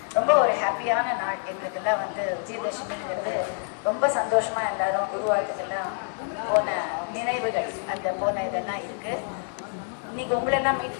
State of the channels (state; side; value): silent; right; 60 dB below the other